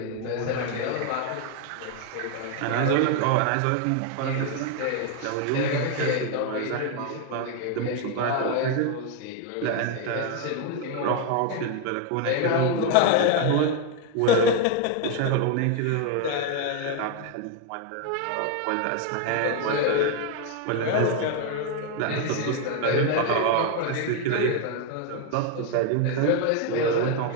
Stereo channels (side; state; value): both; different; correlation 0.01